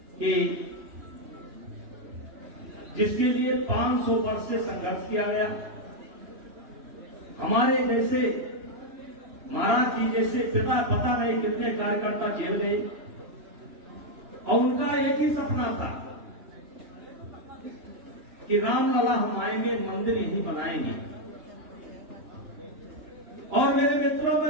कि जिसके लिए 500 वर्ष से संघर्ष किया गया, हमारे जैसे महाराज जी जैसे पिता, पता नहीं कितने कार्यकर्ता जेल गए, और उनका एक ही सपना था कि रामलला हम आएंगे, मंदिर यही बनाएंगे। और मेरे मित्रों,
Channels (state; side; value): late; left; 2.9 ms